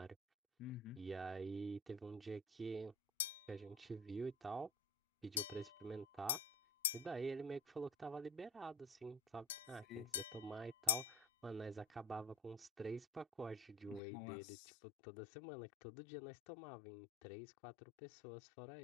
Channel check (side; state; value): right; drops out; at 14.0 s